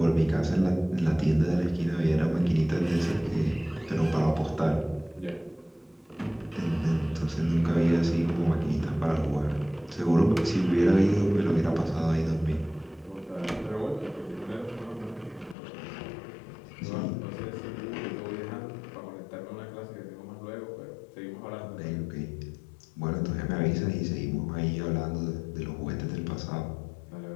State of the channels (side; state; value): right; drops out; at 15.6 s